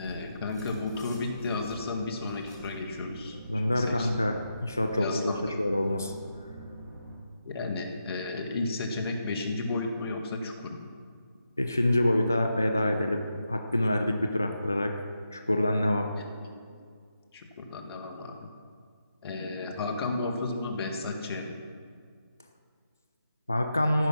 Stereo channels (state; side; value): inverted; both; correlation -0.84